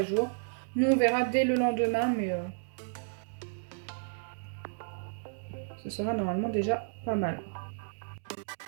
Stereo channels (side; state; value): left; silent; digital silence